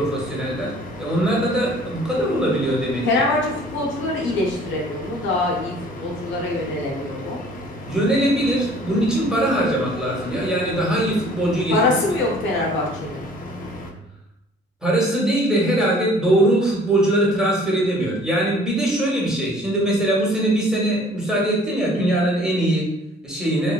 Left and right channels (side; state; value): both; normal; correlation 0.53